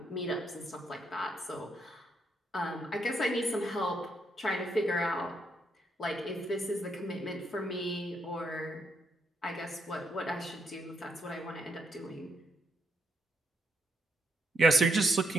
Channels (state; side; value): normal; both; correlation 0.77